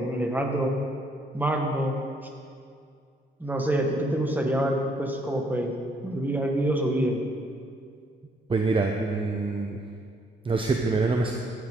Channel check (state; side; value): normal; both; correlation 0.69